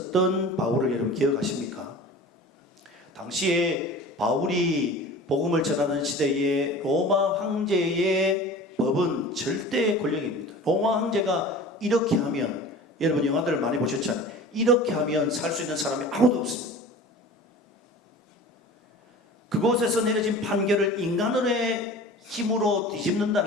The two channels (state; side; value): normal; both; correlation 0.39